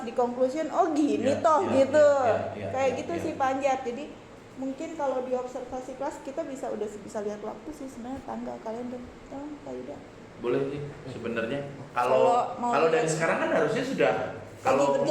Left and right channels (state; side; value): identical; both; correlation 1.00